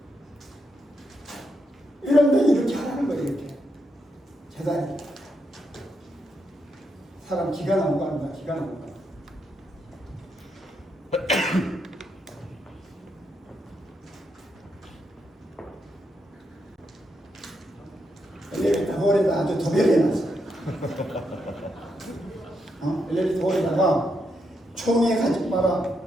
이런데 이렇게 하라는 거예요. 이렇게 재단이 사람 기가 나온 거 아닙니다. 기가 나온 거. 엘리베이터 홀에다 아주 도배해놨어요. 엘리베이터 홀에다가 총에 가지 마라.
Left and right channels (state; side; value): normal; both; correlation 0.81